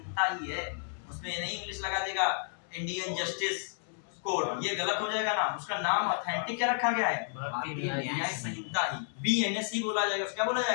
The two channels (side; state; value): right; silent; digital silence